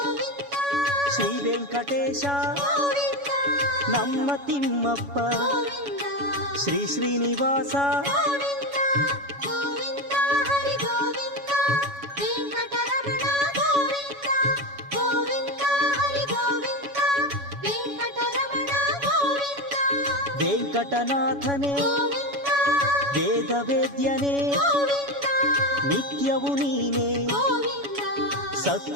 ಶ್ರೀ ವೆಂಕಟೇಶ ನಮ್ಮ ತಿಮ್ಮಪ್ಪ ಶ್ರೀ ಶ್ರೀನಿವಾಸ ವೆಂಕಟನಾಥನೇ ವೇದ ವೇದ್ಯನೇ ನಿತ್ಯವು ನೀನೇ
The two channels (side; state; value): left; late; 7.1 ms